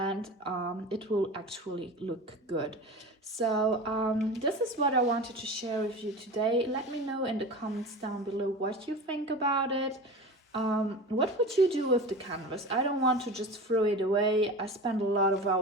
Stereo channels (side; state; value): both; normal; correlation 0.32